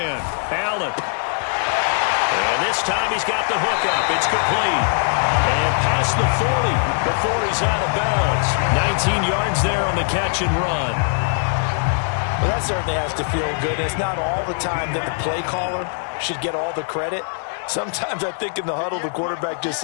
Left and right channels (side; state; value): right; silent; 65 dB below the other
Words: Allen. And this time he's got the hook up. It's complete. And past the 40 before he's out of bounds. 19 yards there on the catch and run. Well, that certainly has to feel good. It's not all the time that the play caller should get all the credit. Sometimes I think in the huddle the quarterback just